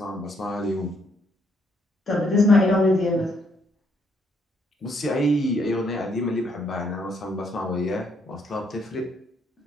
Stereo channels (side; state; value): both; normal; correlation 0.72